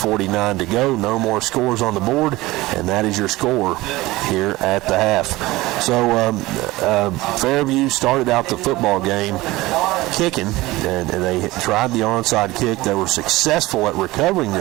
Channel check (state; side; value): quieter; left; 19.3 dB